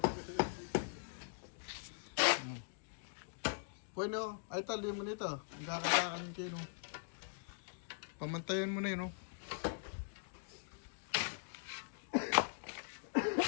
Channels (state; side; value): silent; right; digital silence